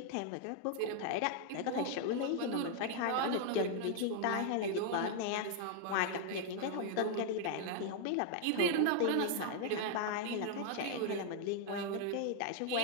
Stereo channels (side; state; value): both; different; correlation 0.00